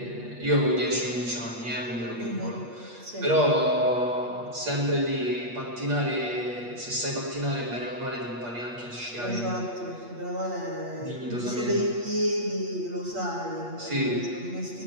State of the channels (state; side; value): late; left; 8.4 ms